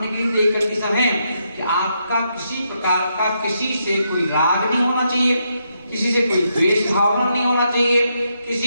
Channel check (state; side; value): inverted; both; correlation -0.80